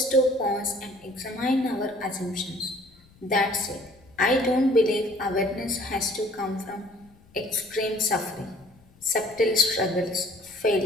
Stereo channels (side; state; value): left; noise; rumble, 28 dB below the sound